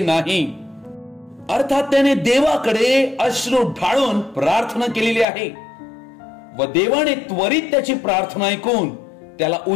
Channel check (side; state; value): right; drops out; at 5.2 s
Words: अर्थात त्याने देवाकडे अश्रू ढाळून प्रार्थना केलेली आहे व देवाने त्वरित त्याची प्रार्थना ऐकून त्याला